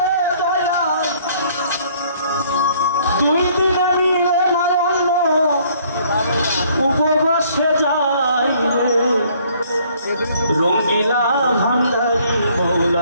দুই দিনে মিলে নাই অন্য উপবাসে যাই রে রঙ্গিলা ভান্ডারি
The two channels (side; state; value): both; inverted; correlation -0.61